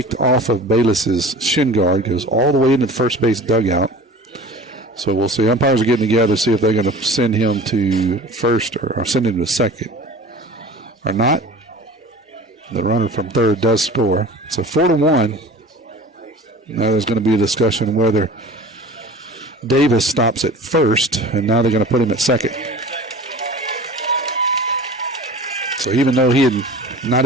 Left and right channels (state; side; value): normal; both; correlation 0.39